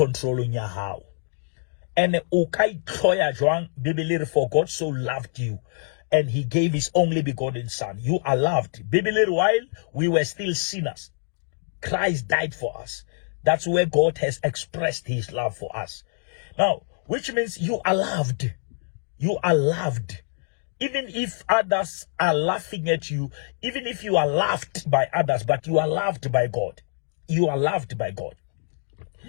your how. And ukai toya joan bibili, for God so loved you, and he gave his only begotten son. You are loved. Bibili, while we were still sinners, Christ died for us. That's where God has expressed his love for us. Now, which means you are loved. You are loved. Even if others are laughing at you, even if you are laughed by others, but you are loved by God. You are loved by God.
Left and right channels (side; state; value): right; silent; digital silence